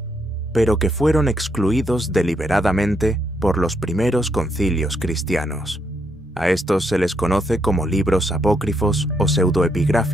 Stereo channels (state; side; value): normal; both; correlation 0.76